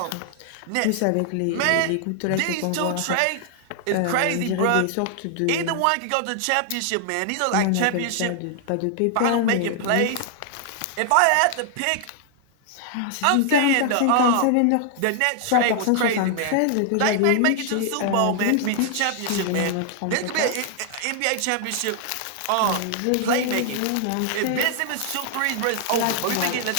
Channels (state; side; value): different; both; correlation 0.00